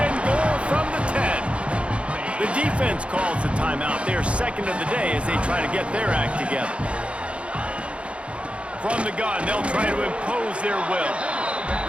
and goal from the 10. The defense calls the timeout. They're 2nd of the day as they try to get their act together. From the gun, they'll try to impose their will.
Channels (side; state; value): left; late; 0.060 ms